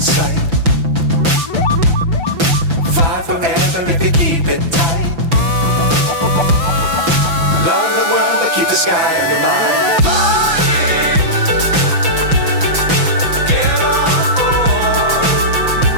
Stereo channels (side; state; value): left; late; 6.0 ms